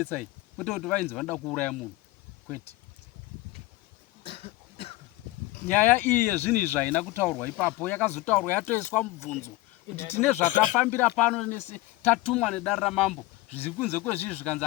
kwete kuti vainzi vanoda kuuraya munhu kwete nyaya iyi yezvinhu izvi haina kutaurwa ipapo yakazotaurwa yatoiswa mubvunzo kuti tine zvatafambira pano nese tatumwa nedare ramambo zviri kunze kwezvizvi zvikanzi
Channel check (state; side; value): quieter; right; 19.2 dB